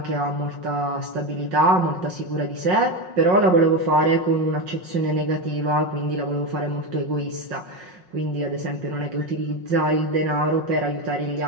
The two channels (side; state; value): left; late; 5.5 ms